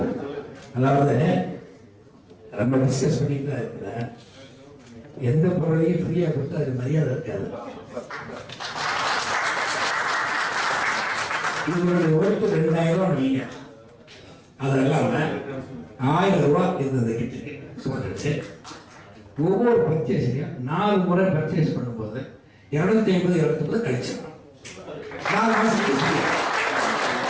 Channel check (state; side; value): identical; both; correlation 1.00